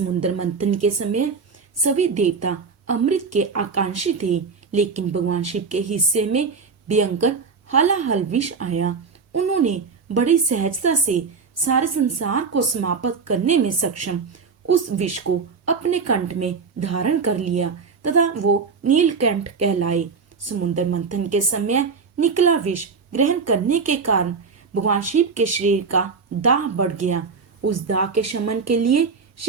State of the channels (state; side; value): quieter; left; 5.1 dB